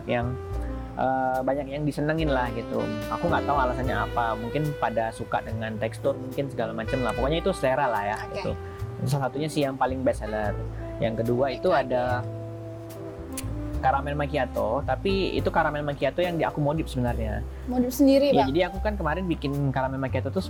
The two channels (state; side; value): identical; both; correlation 1.00